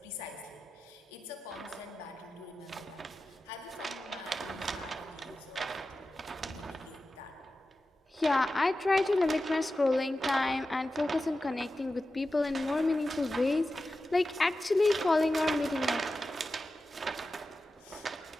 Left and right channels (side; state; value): both; normal; correlation 0.93